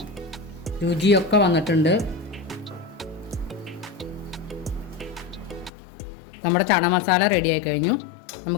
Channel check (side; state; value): right; drops out; at 5.7 s